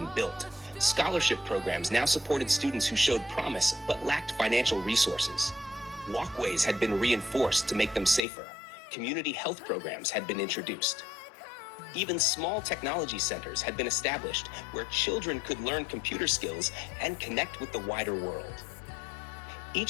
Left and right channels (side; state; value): right; drops out; at 8.2 s